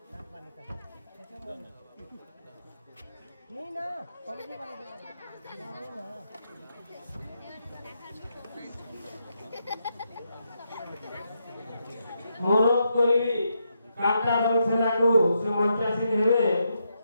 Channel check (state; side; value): inverted; both; correlation -0.82